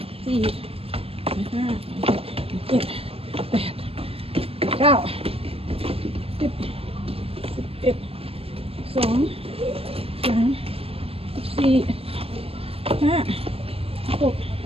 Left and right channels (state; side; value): late; left; 0.28 ms